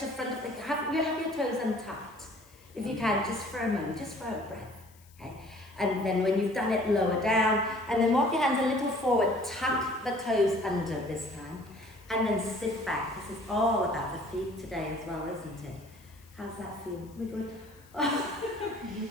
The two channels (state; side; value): noise; left; hiss, 27 dB below the sound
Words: front of the, have your toes untucked. If you can, just for a moment, just for a breath. Okay? And then when you've done it, lower down, and then walk your hands a little forward, tuck the toes under this time, and then sit back. This is all about the feet today as well, isn't it? How's that feel? We good?